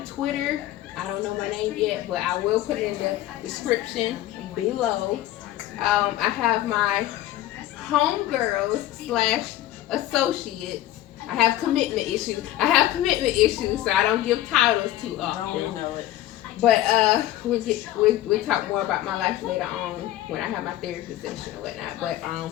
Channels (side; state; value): right; quieter; 14.3 dB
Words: Twitter. I don't know my name yet, but I will put it in the description below. I have my homegirls slash associates. I have commitment issues. So I don't give titles too often. Don't know it. But we'll talk more about my life later on when I have my therapy session or whatnot. But